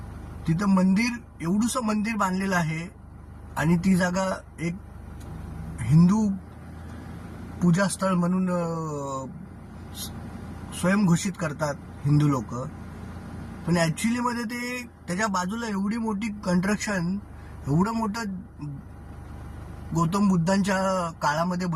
तिथं मंदिर, एवढूसं मंदिर बांधलेलं आहे आणि ती जागा एक हिंदू पूजास्थळ म्हणून स्वयंघोषित करतात हिंदू लोक. पण ऍक्च्युली मध्ये ते त्याच्या बाजूला एवढी मोठी कन्स्ट्रक्शन, एवढं मोठं गौतम बुद्धांच्या काळामध्ये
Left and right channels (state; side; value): identical; both; correlation 1.00